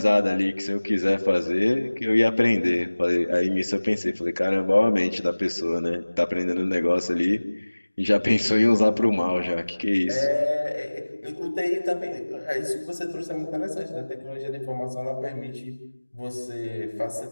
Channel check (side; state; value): both; inverted; correlation -1.00